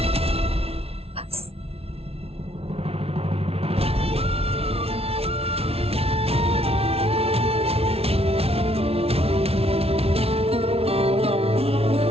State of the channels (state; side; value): late; left; 0.29 ms